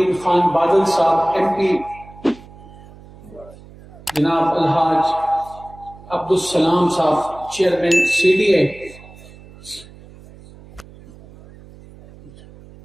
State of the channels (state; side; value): noise; right; hum, 21 dB below the sound